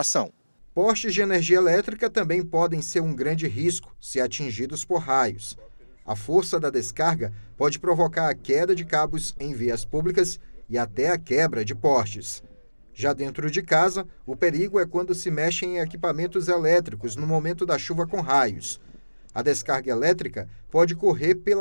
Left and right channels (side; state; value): both; inverted; correlation -1.00